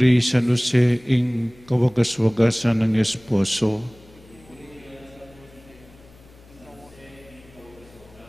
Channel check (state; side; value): noise; left; hum, 25 dB below the sound